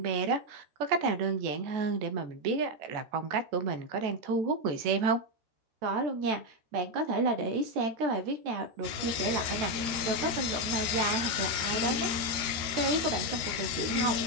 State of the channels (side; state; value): left; late; 13 ms